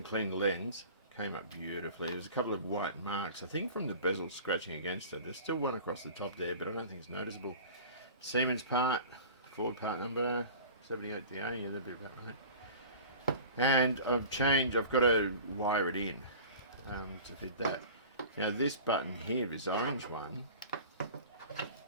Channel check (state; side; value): inverted; both; correlation -0.40